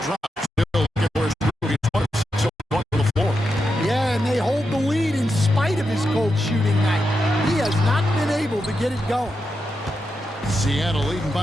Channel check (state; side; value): normal; both; correlation 0.87